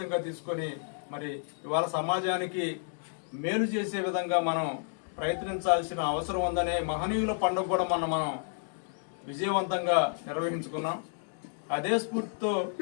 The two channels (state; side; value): silent; right; digital silence